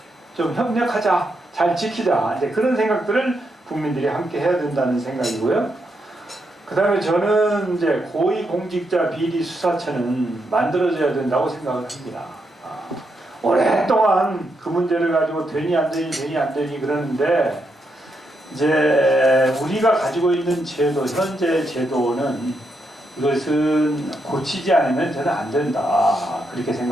좀 협력하자, 잘 지키자, 이제 그런 생각들을 국민들이 함께 해야 된다는 생각이고요. 그 다음에 저는 이제 고위공직자 비리수사처는 만들어져야 된다고 생각을 합니다. 오랫동안 그 문제를 가지고 되니 안 되니 그러는데 이제 우리가 가지고 있는 제도, 현재 제도는 이것은 고치지 않으면 저는 안 된다. 그렇게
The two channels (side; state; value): both; normal; correlation 0.81